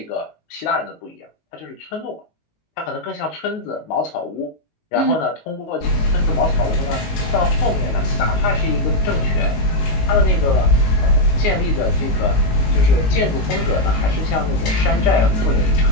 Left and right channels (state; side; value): late; right; 19 ms